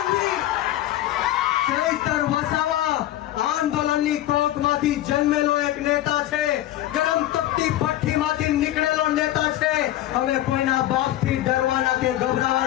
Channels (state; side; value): quieter; right; 13.9 dB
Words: ચૈતર વસાવા આંદોલનની કોકમાંથી જન્મેલો એક નેતા છે, ગરમ તપતી ભઠ્ઠીમાંથી નીકળેલો નેતા છે। હવે કોઈના બાપથી ડરવાના કે